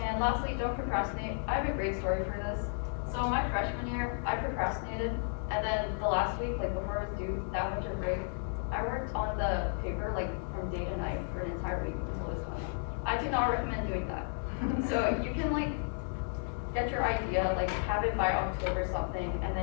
And lastly, don't procrastinate. I have a great story for this. So my freshman year, I procrastinated, and then the last week, like before it was due, that winter break, I worked on the paper like from day to night for an entire week until it was done. I do not recommend doing that. So you can like get your idea, like have it by October something, and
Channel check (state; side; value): silent; right; 56 dB below the other